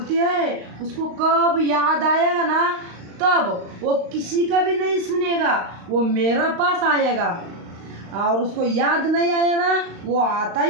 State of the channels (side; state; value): left; late; 35 ms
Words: है उसको कब याद आएगा ना, तब वो किसी का भी नहीं सुनेगा, वो मेरा पास आएगा। और उसको याद नहीं आया ना, वो आता